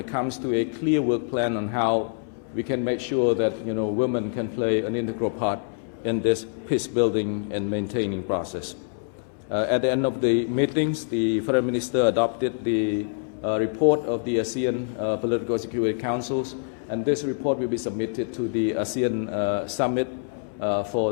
comes to a clear work plan on how we can make sure that women can play an integral part in this peace building and maintaining process. At the end of the meetings, the Foreign Minister adopted the report of the ASEAN Political Security Councils, and this report will be submitted to the ASEAN Summit for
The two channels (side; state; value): right; silent; 61 dB below the other